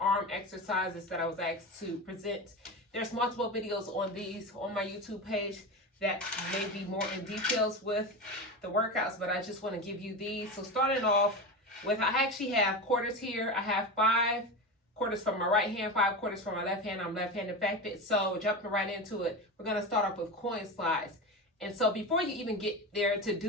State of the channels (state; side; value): normal; both; correlation 0.23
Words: exercises that I was asked to present. There's multiple videos on these on my YouTube page that may be more in details with the workouts, but I just want to give you these. So starting off with, I actually have quarters here. I have 5 quarters from my right hand, 5 quarters from my left hand. I'm left-handed affected. So jumping right into it, we're going to start off with coin slides. And so before you even get there to